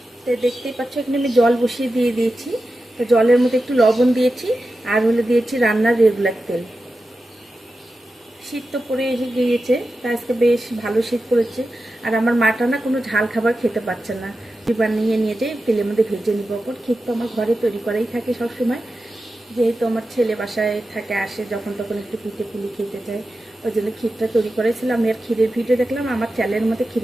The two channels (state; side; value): normal; both; correlation 0.92